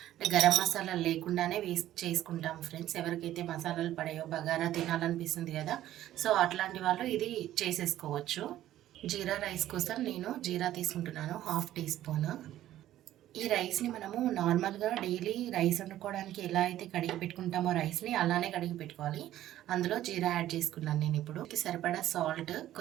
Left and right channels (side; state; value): left; quieter; 13.3 dB